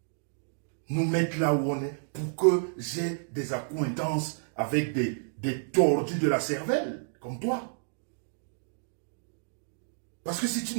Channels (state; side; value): silent; left; digital silence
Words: nous mette là où on est pour que j'ai des accointances avec des tordus de la cervelle, comme toi. Parce que si tu